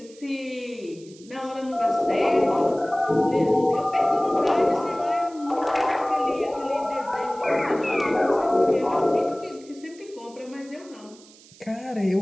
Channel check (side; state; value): right; noise; hiss, 24 dB below the sound